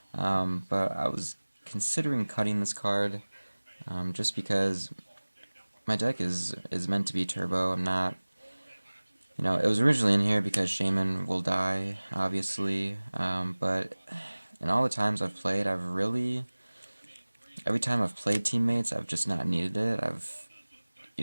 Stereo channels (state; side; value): inverted; both; correlation -1.00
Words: But I was considering cutting this card just because my deck is meant to be turbo. I'm not... You know, it was originally in here because Shaman will die, obviously, but in all the times I've played, every time I've played Teammates, I've just not needed it.